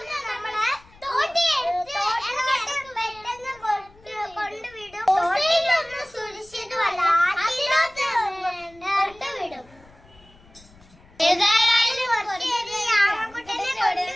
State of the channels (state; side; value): noise; left; rumble, 26 dB below the sound